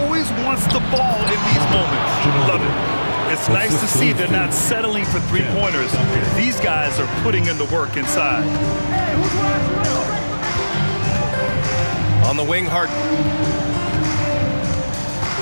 wants the ball in these moments. Love it. It's nice to see they're not settling for three-pointers. These guys are putting in the work inside. On the wing, Harden.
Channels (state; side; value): inverted; both; correlation -1.00